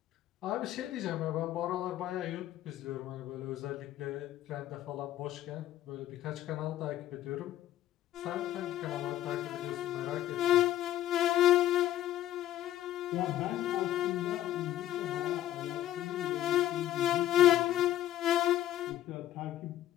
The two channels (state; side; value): quieter; right; 12.9 dB